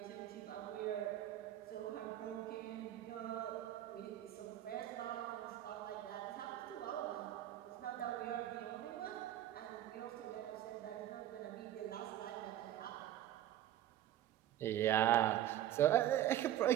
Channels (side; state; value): left; quieter; 12.5 dB